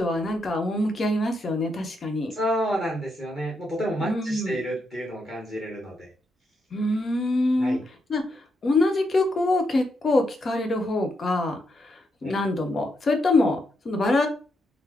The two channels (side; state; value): both; normal; correlation 0.81